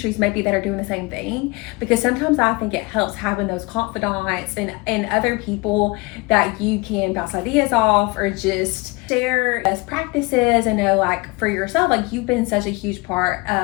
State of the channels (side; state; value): right; quieter; 25.6 dB